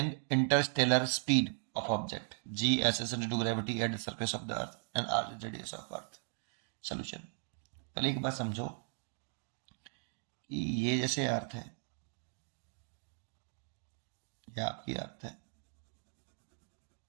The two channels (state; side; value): silent; left; 53 dB below the other